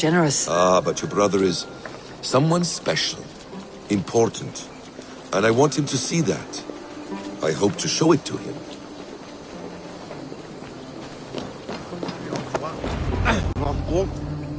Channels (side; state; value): both; identical; correlation 1.00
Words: Ah, but your brother is someone special, important, and I want him to see that. I hope to show it to him.